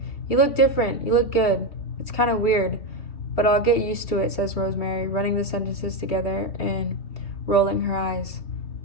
You look different. You look good. It's kind of weird, but I'll get used to it, says Rosemary, running the sentences together and rolling her eyes.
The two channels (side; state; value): right; late; 3.2 ms